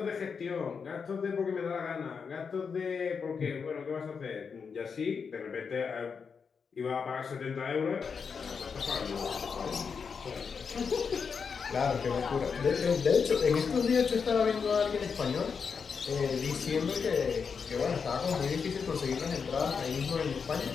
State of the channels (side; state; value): right; quieter; 5.9 dB